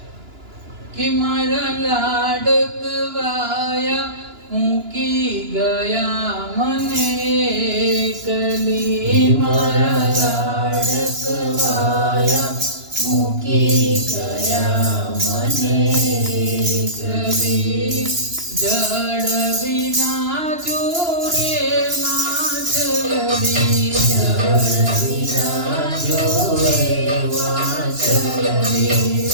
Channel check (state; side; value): late; left; 2.9 ms